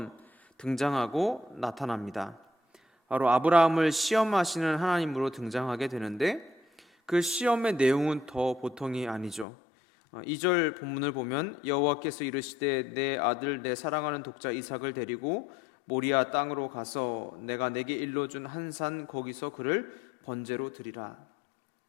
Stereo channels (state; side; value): drops out; right; at 9.5 s